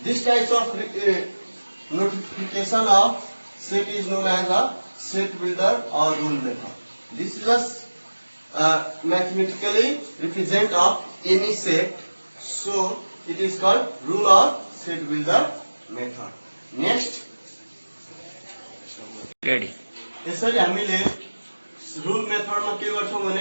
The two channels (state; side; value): inverted; both; correlation -1.00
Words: This type of notification of set is known as a set builder or rule method. This is a mathematically represent of any set, so it is called rule or set builder method. Next, ready. यसरी हामीले rule method मा के गर्छौं भने